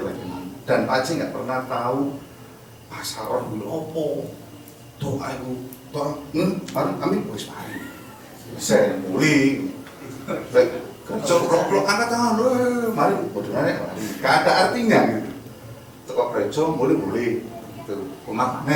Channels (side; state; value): both; identical; correlation 1.00